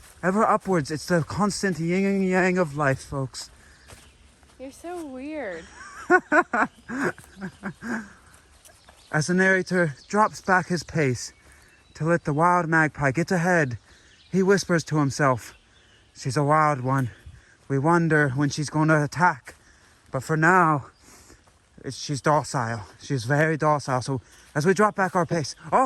ever upwards. It's the constant yin and yang of life, folks. You're so weird. As the narrator drops back his pace to let the wild magpie get ahead, he whispers to himself, she's a wild one. We wonder when she's going to attack. But for now, she's docile. She's very docile. So as we drop back our pace,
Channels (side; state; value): both; identical; correlation 1.00